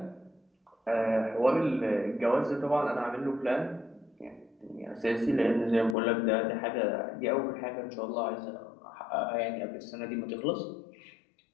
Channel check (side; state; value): right; drops out; at 6.0 s